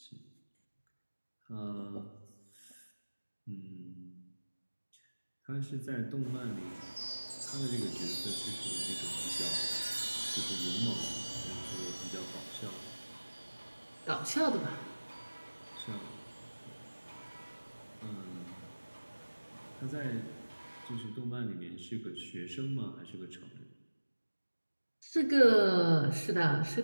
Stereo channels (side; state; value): both; inverted; correlation -1.00